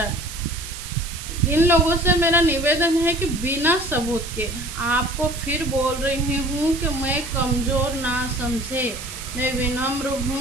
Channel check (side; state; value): right; noise; hiss, 11 dB below the sound